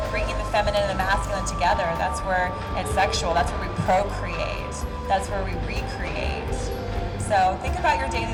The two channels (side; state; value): both; identical; correlation 1.00